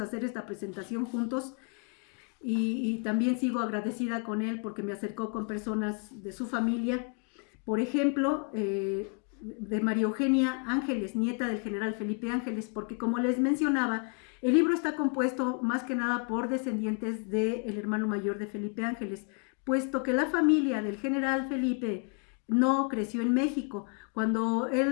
esta presentación juntos, y también sigo agradecida con él porque me acercó con personas de su familia. Por ejemplo, de María Eugenia Ángeles, nieta del general Felipe Ángeles, porque como les mencionaba, el libro está compuesto más que nada por descendientes del hermano mayor de Felipe Ángeles, puesto que la familia del general Felipe no creció en México. Cuando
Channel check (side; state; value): right; quieter; 38.8 dB